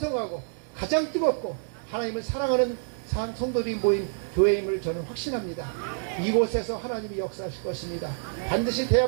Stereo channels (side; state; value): left; silent; digital silence